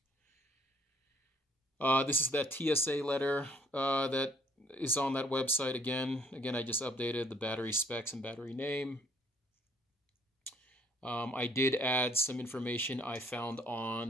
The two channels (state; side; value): normal; both; correlation 0.61